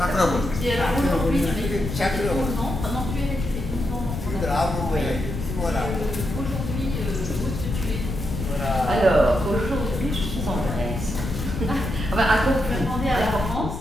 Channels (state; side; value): noise; left; rumble, 6 dB below the sound